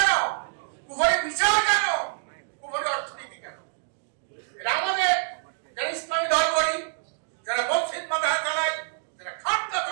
কুফরি বিচার কেন, কুফরি অর্থনীতি কেন? এটা আমাদের যারা ইসলামী দল করি, যারা মসজিদ মাদ্রাসা চালায়, যারা খানকা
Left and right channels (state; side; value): silent; left; digital silence